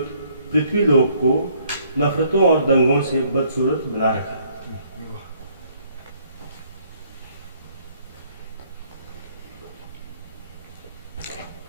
पृथ्वीलोक को नफरतों और दंगों से बदसूरत बना रखा है।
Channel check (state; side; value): inverted; both; correlation -0.65